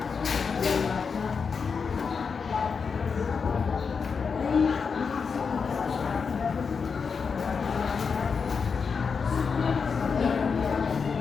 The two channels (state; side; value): quieter; right; 5.6 dB